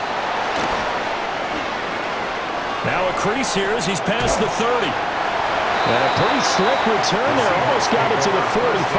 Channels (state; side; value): identical; both; correlation 1.00